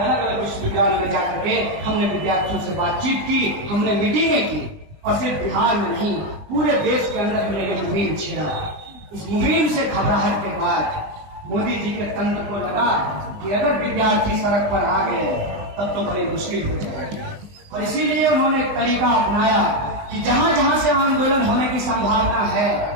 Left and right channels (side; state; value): left; late; 20 ms